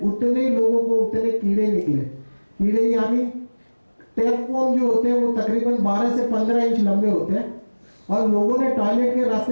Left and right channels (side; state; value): both; inverted; correlation -1.00